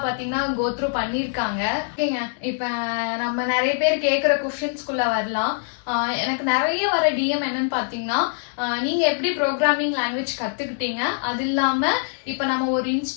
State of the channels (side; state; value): right; silent; digital silence